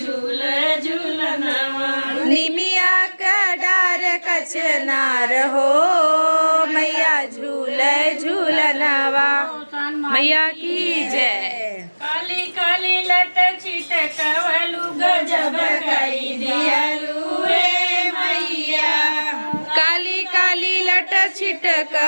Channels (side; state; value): both; inverted; correlation -1.00